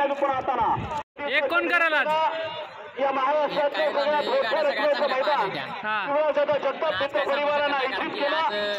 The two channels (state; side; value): identical; both; correlation 1.00